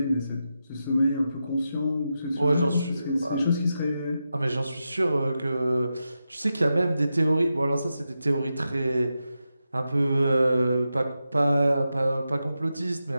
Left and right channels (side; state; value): both; inverted; correlation -0.89